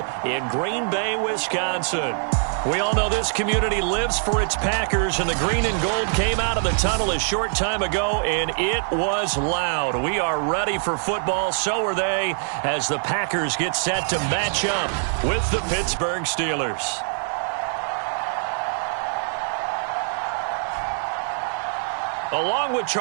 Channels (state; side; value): silent; left; 57 dB below the other